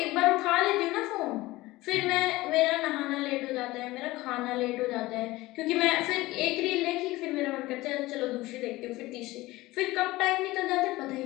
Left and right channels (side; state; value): right; quieter; 19.0 dB